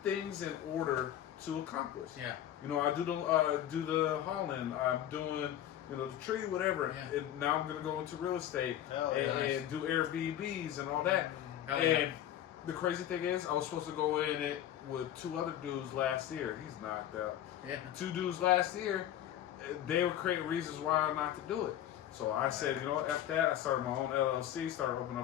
things in order to accomplish. You know, I do the hauling. I'm doing, the tree, whatever. And now I'm going to go into real estate and do Airbnbs and all that. And the crazy thing is, I was supposed to go in it with 2 other dudes last year. He's knocked out. 2 dudes last year, they were creating reasons why not to do it. So I said, you know what, F that. I started my own LLC, started opening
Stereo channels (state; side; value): quieter; right; 11.5 dB